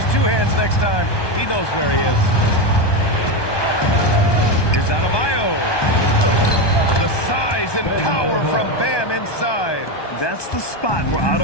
2 hands next time. He knows where he is. Here's Adebayo. The size and power from Bam inside. That's the spot where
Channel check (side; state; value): right; late; 1.2 ms